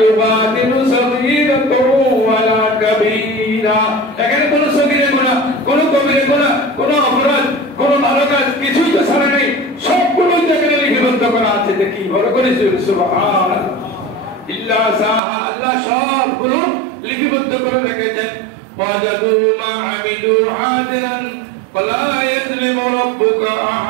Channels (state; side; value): drops out; left; at 15.2 s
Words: ইউবাদিলু সগীরাতাও ওয়ালা কাবীরা, এখানে কোনো সগীরা গুনাহ, কোনো কবিরা গুনাহ, কোনো অপরাধ, কোনো ভালো কাজ কিছুই তো ছাড়া নেই, সবগুলো এখানে লিপিবদ্ধ করা আছে। দেখি বড় করে সুবহানাল্লাহ, ইল্লা সাহা, আল্লাহ সবগুলো লিপিবদ্ধ করে রেখেছেন। ওয়াজাদু মা আমিলু হাদিরান ফালা ইয়াজলিমু রাব্বুকা